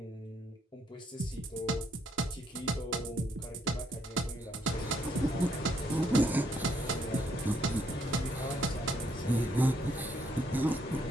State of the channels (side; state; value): both; normal; correlation 0.72